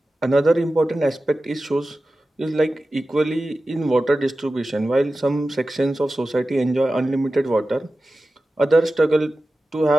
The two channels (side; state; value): both; normal; correlation 0.94